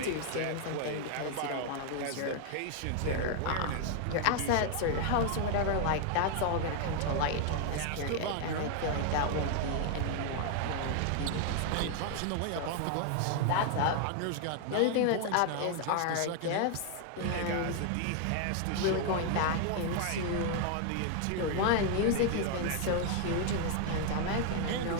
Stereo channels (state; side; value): different; both; correlation 0.00